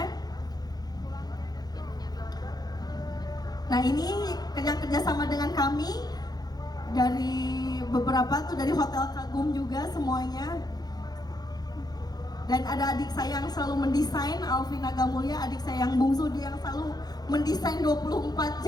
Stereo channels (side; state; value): right; late; 0.19 ms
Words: Nah ini kerjasama dengan kami dari beberapa tuh, dari Hotel Kagum juga semuanya. Dan ada adik saya yang selalu mendesain, Alvina Gamulya, adik saya yang bungsu, dia yang selalu mendesain 24